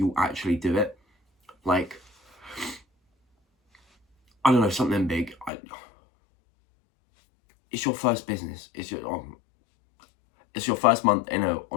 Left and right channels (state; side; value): drops out; right; at 5.5 s